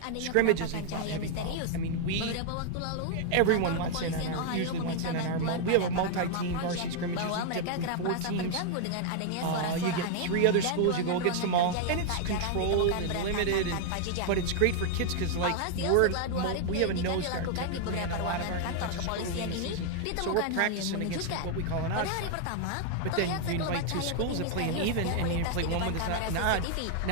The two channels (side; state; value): both; different; correlation 0.00